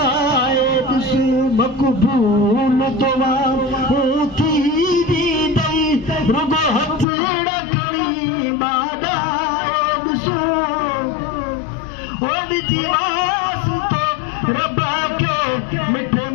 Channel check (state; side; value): drops out; right; at 7.1 s